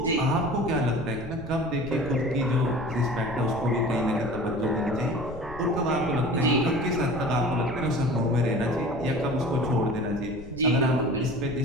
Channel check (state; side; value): noise; left; rumble, 16 dB below the sound